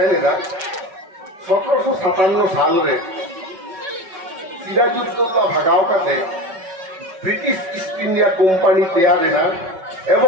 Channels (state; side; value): late; left; 5.3 ms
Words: ना 1757 साल रे सिराजुद्दौला भगाव काते ब्रिटिश ईस्ट इंडिया कोम्पानी तैयार है ना